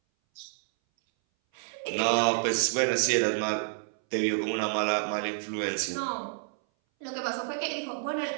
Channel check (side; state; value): left; silent; 58 dB below the other